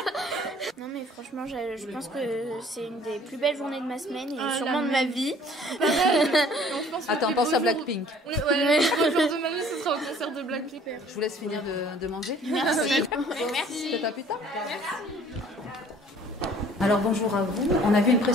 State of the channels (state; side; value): normal; both; correlation 0.54